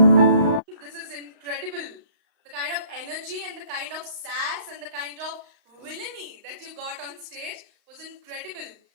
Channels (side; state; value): left; late; 35 ms